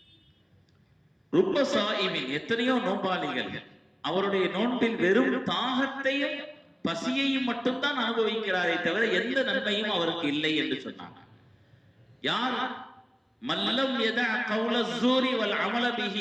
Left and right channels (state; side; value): identical; both; correlation 1.00